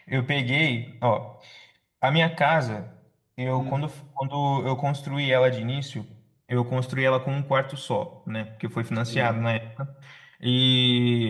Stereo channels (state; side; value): identical; both; correlation 1.00